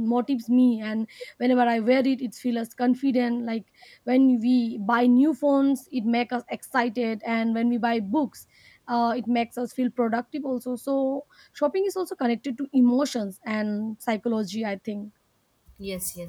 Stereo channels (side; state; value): both; identical; correlation 1.00